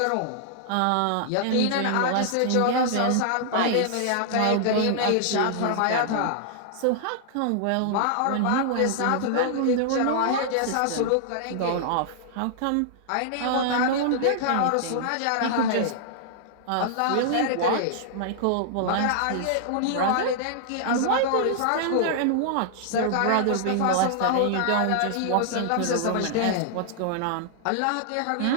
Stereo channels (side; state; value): both; different; correlation -0.01